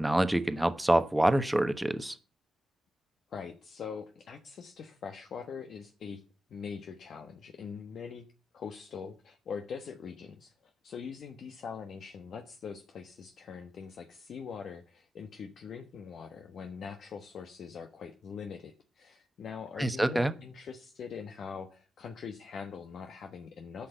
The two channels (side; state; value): both; normal; correlation 0.93